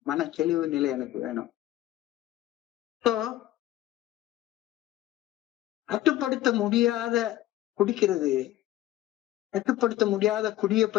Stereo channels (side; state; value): right; quieter; 14.5 dB